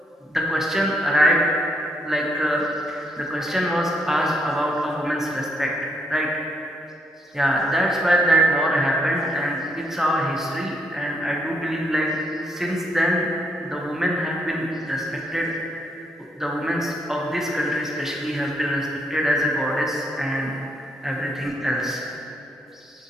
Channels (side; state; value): both; normal; correlation 0.73